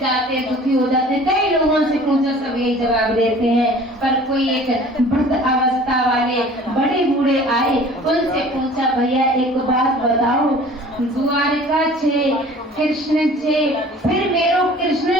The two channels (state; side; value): normal; both; correlation 0.47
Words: जाते, दुखी हो जाते। कई लोगों से पूछो सब यही जवाब देते हैं, पर कोई एक वृद्ध अवस्था वाले बड़े बूढ़े आए, उनसे पूछा, भैया एक बात बताओ, द्वारका 6, कृष्ण 6, फिर मेरो कृष्ण